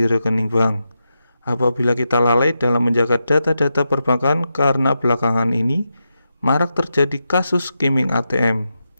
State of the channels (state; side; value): inverted; both; correlation -0.87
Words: rekening bank. Apabila kita lalai dalam menjaga data-data perbankan, karena belakangan ini marak terjadi kasus skimming ATM.